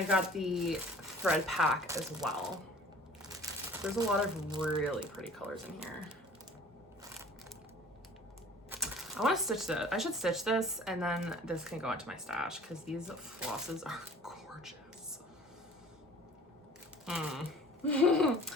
got the thread pack as well. There's a lot of really pretty colors in here. I want to stitch this. I should stitch this and then this can go into my stash because these flosses are gorgeous.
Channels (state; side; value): normal; both; correlation 0.48